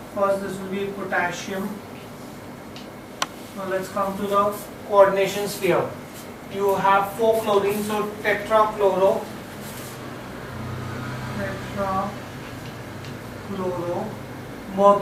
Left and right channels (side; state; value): both; identical; correlation 1.00